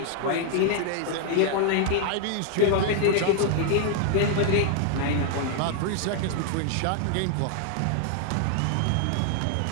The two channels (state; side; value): different; both; correlation 0.00